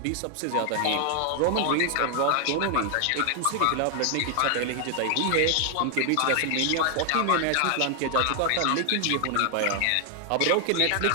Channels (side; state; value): both; different; correlation 0.00